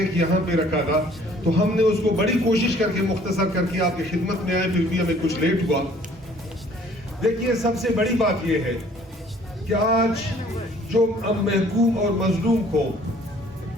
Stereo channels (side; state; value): both; normal; correlation 0.56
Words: یہاں پہ رکھا تھا. تو ہم نے اس کو بڑی کوشش کر کے مختصر کر کے آپ کی خدمت میں آئے, پھر بھی ہمیں کچھ لیٹ ہوا. دیکھیے سب سے بڑی بات یہ ہے کہ آج جو محکوم اور مظلوم کو,